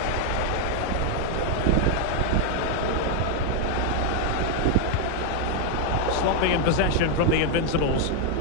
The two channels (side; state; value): both; different; correlation 0.00